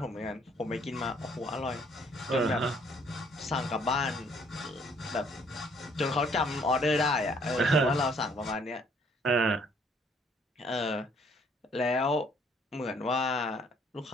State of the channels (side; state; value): both; normal; correlation 0.63